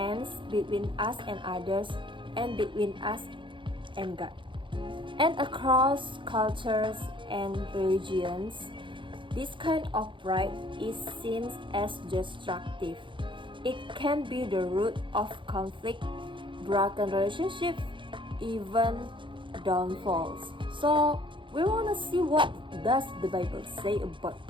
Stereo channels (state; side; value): late; left; 0.24 ms